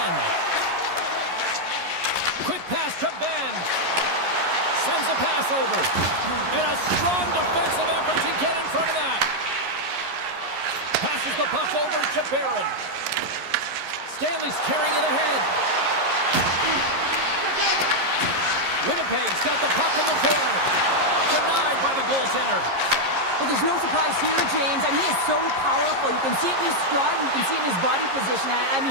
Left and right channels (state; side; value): late; left; 11 ms